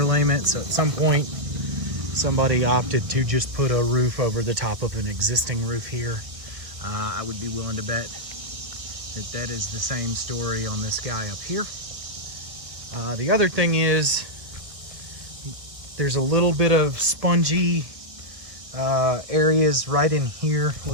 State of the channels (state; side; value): late; left; 1.6 ms